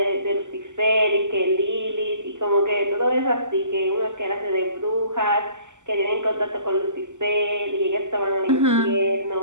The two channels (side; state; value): left; late; 0.85 ms